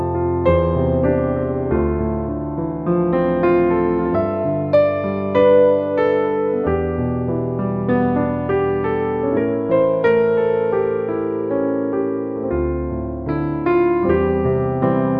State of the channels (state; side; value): identical; both; correlation 1.00